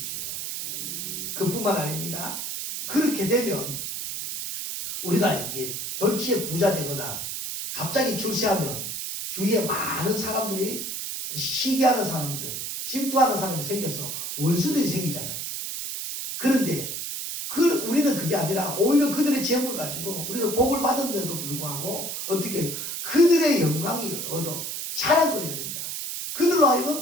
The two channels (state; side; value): noise; right; hiss, 5 dB below the sound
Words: 그뿐만 아닙니다. 그렇게 되면 우리가 이게 졸지에 부자 되거나 갑자기 출세하면 주위에 많은 사람들이 시기하는 사람들, 질투하는 사람이 생겨서 원수들이 생기잖아요. 그런데 우리는 그게 아니라 오히려 그들의 재물을 가지고 우리가 복을 받았는데도 불구하고 어떻게 해요? 그들의 영광이 얻어 자랑거리가 된다. 그들로